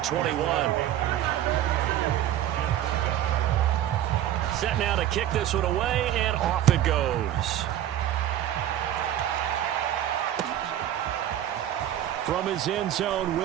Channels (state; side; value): quieter; left; 11.8 dB